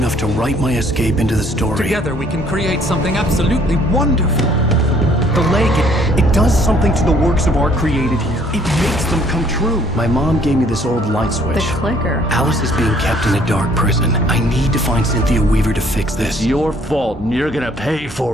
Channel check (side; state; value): both; normal; correlation 0.61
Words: to write my escape into the story. Together we can create something absolutely wonderful. The lake, it does something to the works of art created here. It makes them come true. My mom gave me this old light switch. The clicker. Alice is being kept in a dark prison. I need to find Cynthia Weaver to fix this. It's your fault, and you're gonna pay